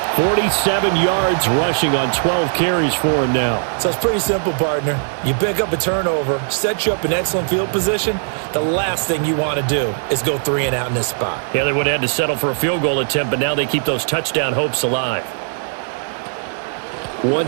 47 yards rushing on 12 carries for him now. So it's pretty simple, partner. You pick up a turnover, set you up in excellent field position. The last thing you want to do is go 3 and out in this spot. Yeah, they would have had to settle for a field goal attempt, but now they keep those touchdown hopes alive.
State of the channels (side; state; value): left; silent; digital silence